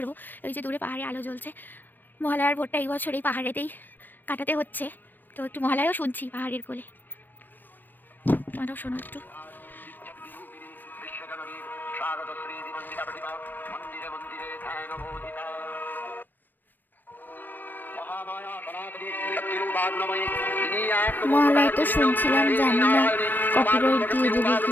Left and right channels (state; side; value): late; right; 0.088 ms